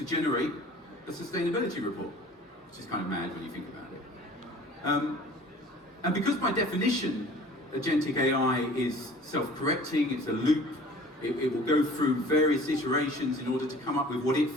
generate a sustainability report, which is kind of mad when you think about it. And because by definition, agentic AI is self-correcting, it's a loop, it will go through various iterations in order to come up with what it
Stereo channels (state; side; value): normal; both; correlation 0.47